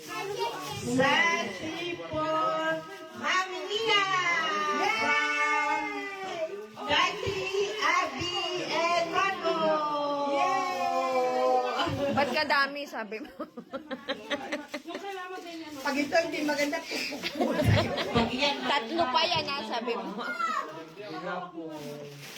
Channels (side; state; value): both; identical; correlation 1.00